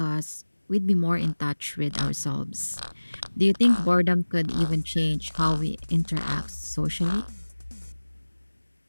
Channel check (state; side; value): inverted; both; correlation -1.00